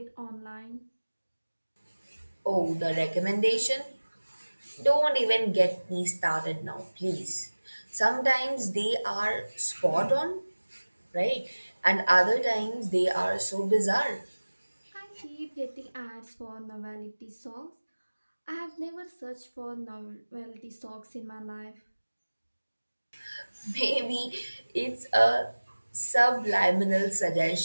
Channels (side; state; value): both; inverted; correlation -1.00